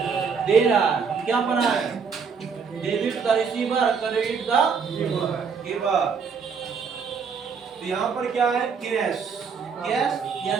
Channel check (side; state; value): left; quieter; 5.9 dB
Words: दे रहा है। क्या बना है, debit the receiver, credit the giver. तो यहाँ पर क्या है, कैश। कैश